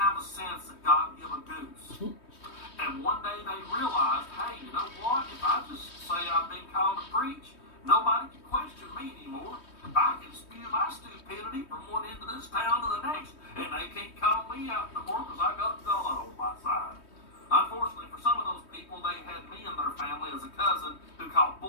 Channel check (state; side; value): late; right; 3.2 ms